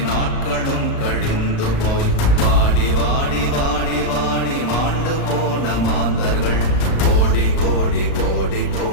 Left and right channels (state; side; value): late; right; 36 ms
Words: நாட்களும் கழிந்து போய் வாடி வாடி வாடி வாடி மாண்டு போன மாந்தர்கள் கோடி கோடி கோடி